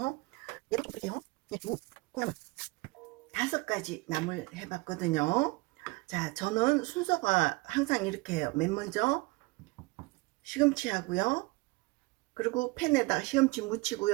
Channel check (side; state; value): left; quieter; 24.4 dB